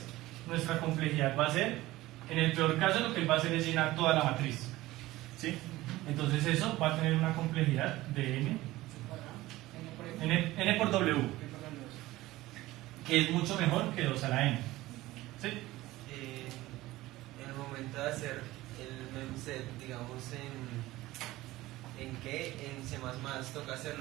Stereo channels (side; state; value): left; quieter; 17.7 dB